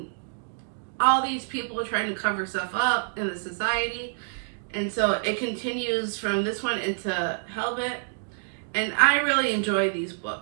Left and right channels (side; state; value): left; silent; digital silence